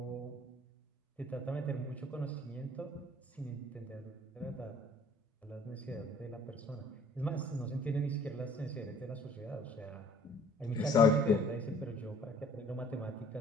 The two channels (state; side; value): normal; both; correlation 0.54